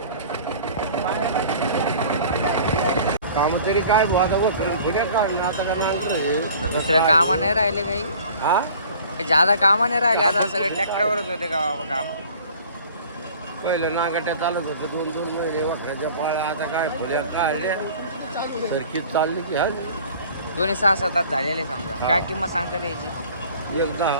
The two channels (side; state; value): both; inverted; correlation -0.47